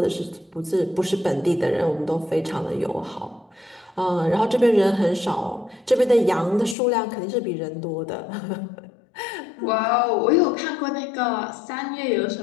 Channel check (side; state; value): right; drops out; at 6.8 s